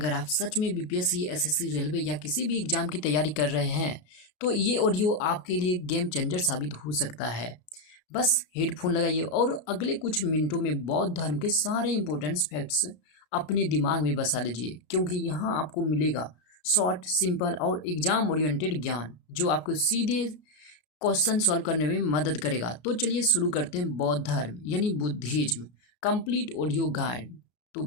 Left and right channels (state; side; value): late; right; 33 ms